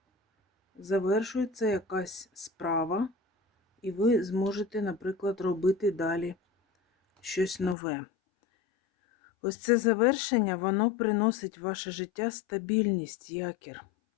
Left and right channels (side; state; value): right; drops out; at 7.8 s